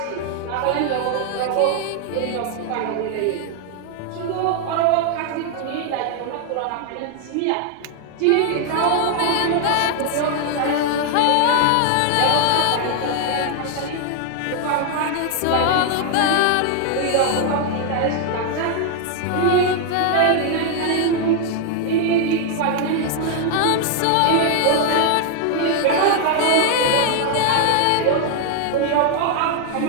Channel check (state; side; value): different; both; correlation 0.00